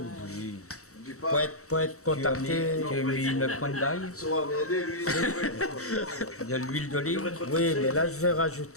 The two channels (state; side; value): late; right; 0.64 ms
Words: Oui. Pour être contacté. Tu as mis une pointe d'ail. Il y a l'huile d'olive. Oui, mais là, je vais